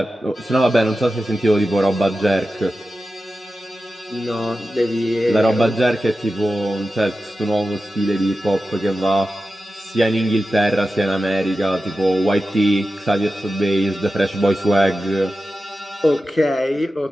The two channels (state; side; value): normal; both; correlation 0.93